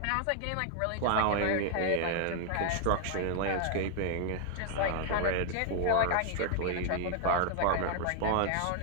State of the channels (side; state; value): both; different; correlation 0.00